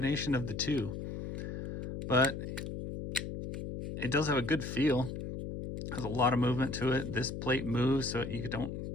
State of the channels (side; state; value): left; noise; hum, 6 dB below the sound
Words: of the two. But it does have a good feel. Has a lot of movement to it. This plate moves so you don't